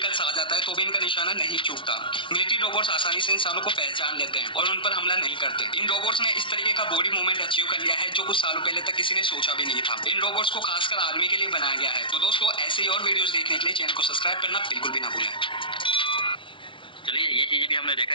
आ जाता है तो भी इनका निशाना नहीं चूकता। मिलिट्री रोबोट्स आसानी से इंसानों को पहचान लेते हैं और उन पर हमला नहीं करते। इन रोबोट्स ने इस तरीके का बॉडी मूवमेंट अचीव कर लिया है जो कुछ सालों पहले तक किसी ने सोचा भी नहीं था। इन रोबोट्स को खासकर आर्मी के लिए बनाया गया है। तो दोस्तों, ऐसे ही और वीडियोस देखने के लिए चैनल को सब्सक्राइब करना बिल्कुल भी ना भूलें। चलिए ये चीज़ें भी हमने देखा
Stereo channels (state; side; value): late; right; 0.25 ms